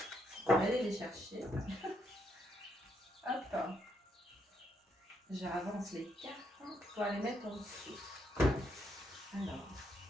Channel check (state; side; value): normal; both; correlation 0.76